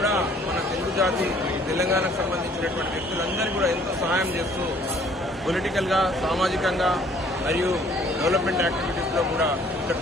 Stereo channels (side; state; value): both; normal; correlation 0.58